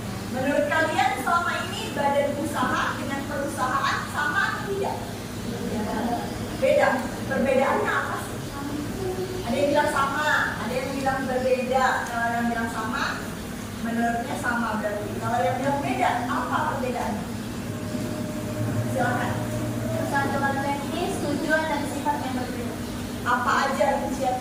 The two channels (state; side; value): identical; both; correlation 1.00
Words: Menurut kalian selama ini badan usaha dengan perusahaan sama atau tidak? Beda. Perbedaannya apa sih? Ada yang bilang sama, ada yang bilang berbeda. Kalau yang bilang sama, menurutnya sama berarti. Kalau yang bilang beda, apa perbedaannya? Silakan. Ketentuan teknis, tujuan dan sifat yang berbeda. Apa aja